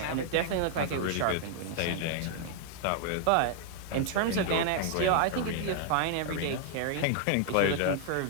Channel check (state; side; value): different; both; correlation 0.00